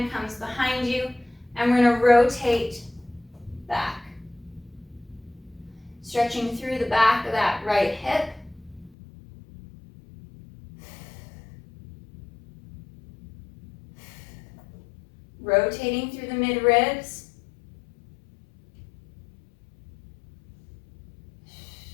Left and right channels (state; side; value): drops out; right; at 9.0 s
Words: comes behind you, and we're going to rotate back. Stretching through the back of that right hip. Rotating through the mid-ribs.